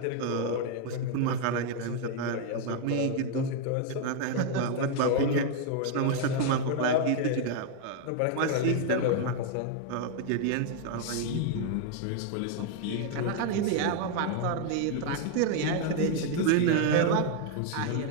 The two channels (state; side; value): different; both; correlation 0.00